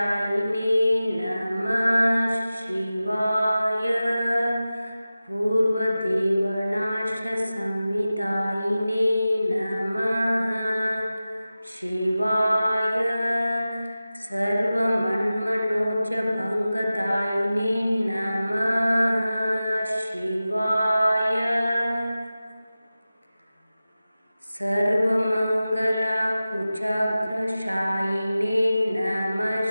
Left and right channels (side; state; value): both; inverted; correlation -0.95